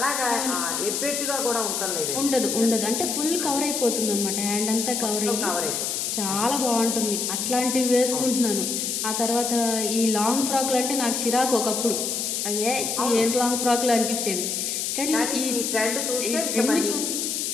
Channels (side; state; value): left; noise; hiss, 1 dB below the sound